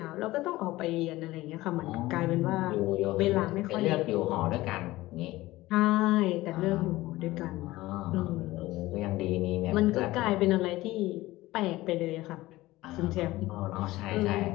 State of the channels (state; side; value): quieter; right; 18.0 dB